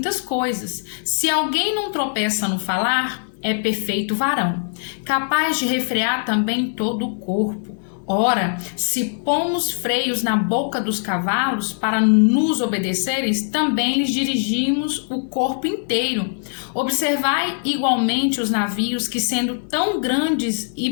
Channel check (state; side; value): silent; right; digital silence